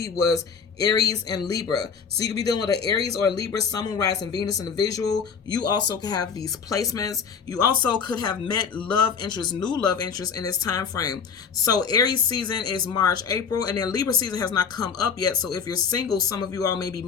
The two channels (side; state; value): right; quieter; 6.2 dB